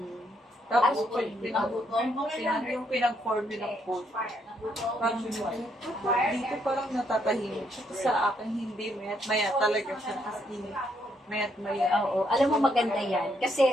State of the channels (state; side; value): normal; both; correlation 0.74